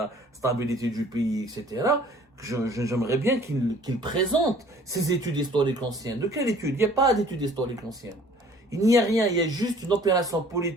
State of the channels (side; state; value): both; normal; correlation 0.53